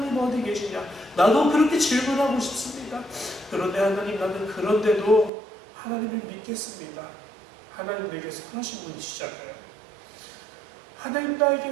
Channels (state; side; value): drops out; left; at 5.3 s